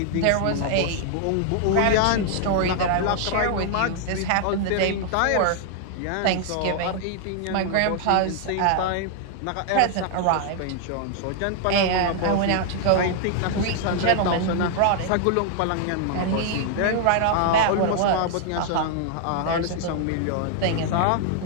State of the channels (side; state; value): both; different; correlation 0.00